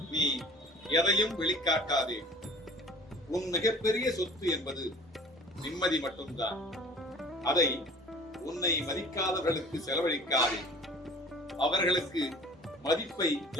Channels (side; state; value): both; normal; correlation 0.46